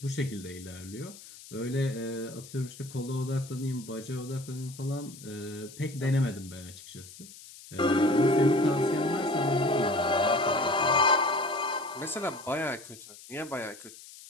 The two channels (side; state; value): left; noise; hiss, 18 dB below the sound